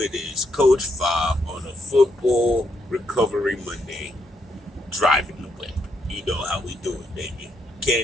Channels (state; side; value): normal; both; correlation 0.77